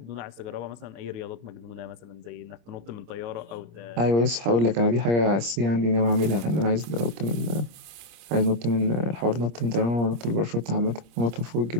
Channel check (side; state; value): left; late; 26 ms